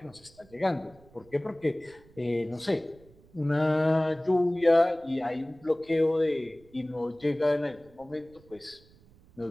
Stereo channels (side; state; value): right; noise; rumble, 26 dB below the sound